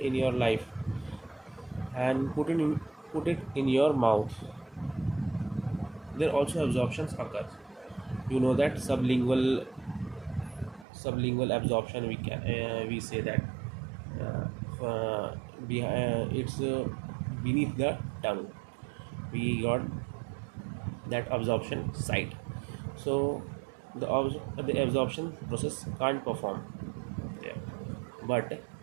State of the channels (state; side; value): drops out; left; at 10.9 s